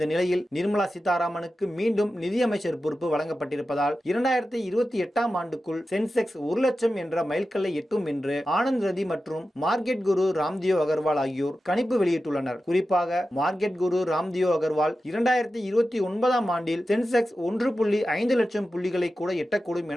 நிலையில் நிர்மலா சீதாராமனுக்கு மீண்டும் நிதியமைச்சர் பொறுப்பு வழங்கப்பட்டிருப்பதால் 2028ஆம் ஆண்டுக்குள் சென்செக்ஸ் 1 லட்சம் என்ற மைல்கல்லை எட்டும் என்று ஆனந்த் ரதி மற்றும் மார்க்கெட் குரு ராம்தேவ் அகர்வால் ஆகியோர் கணிப்பு வெளியிட்டுள்ளனர். குறிப்பாக மார்க்கெட் குரு ராம்தேவ் அகர்வால் 2029ஆம் ஆண்டில் சென்செக்ஸ் 1.5 லட்சம் புள்ளிகளை கூட எட்டக்கூடும்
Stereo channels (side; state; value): both; normal; correlation 0.92